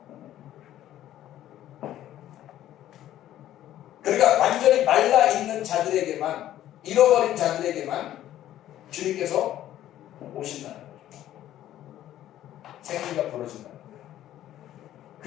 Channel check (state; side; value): quieter; right; 12.7 dB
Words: 그러니까 완전히 말라 있는 자들에게만, 잃어버린 자들에게만 주님께서 오신다는 거죠. 생기가 벌어진다는 거예요.